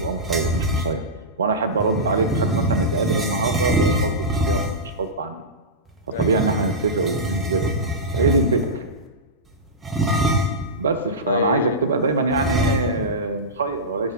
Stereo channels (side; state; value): both; normal; correlation -0.15